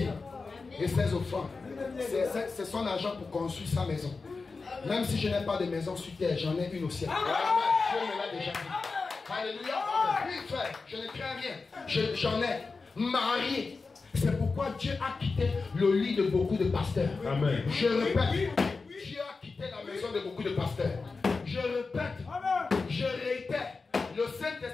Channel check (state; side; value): quieter; right; 4.2 dB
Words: et ses offrandes. C'est son argent pour construire sa maison. Même si je n'ai pas de maison sur terre, j'en ai une au ciel. Dieu me l'a déjà dit. Alléluia. Oui, frère, je ne crains rien. J'en ai marié. C'est pourquoi Dieu a quitté le lit de beaucoup de pasteurs. Amen. Je répète, Dieu a quitté la maison de beaucoup de pasteurs. Je répète, je réitère, le